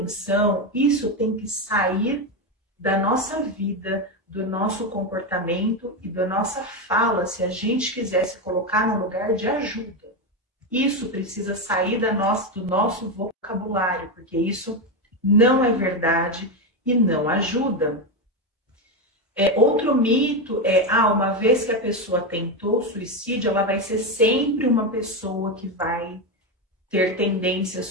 isso tem que sair da nossa vida, do nosso comportamento e da nossa fala, se a gente quiser se colocar no lugar de ajuda. Isso precisa sair do nosso vocabulário, porque isso não é verdade e não ajuda. Outro mito é, uma vez que a pessoa tentou suicídio, ela vai ser sempre uma pessoa que vai ter tendências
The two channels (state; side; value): normal; both; correlation 0.11